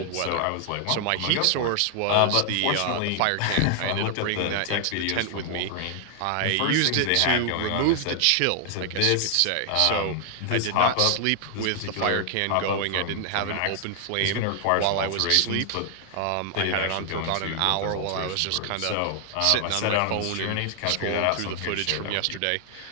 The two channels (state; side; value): different; both; correlation 0.00